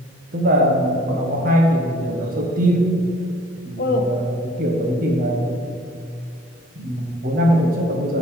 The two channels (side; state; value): both; normal; correlation 0.53